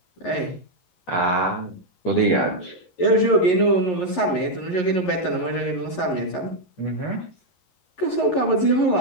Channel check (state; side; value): late; right; 11 ms